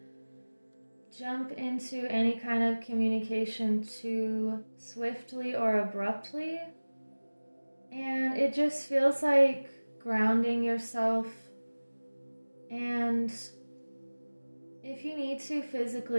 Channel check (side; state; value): both; inverted; correlation -1.00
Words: jump into any kind of communication too swiftly or abruptly. And it just feels like grounding yourself. And if you need to